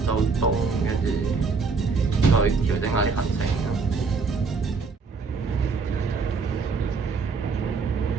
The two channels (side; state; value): left; quieter; 4.8 dB